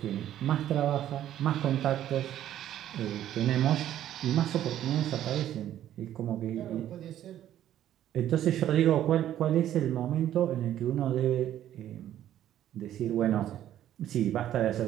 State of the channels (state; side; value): quieter; left; 11.8 dB